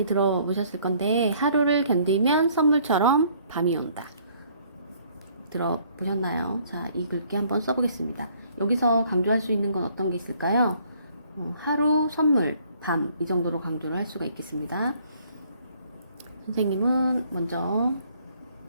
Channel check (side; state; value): both; inverted; correlation -0.62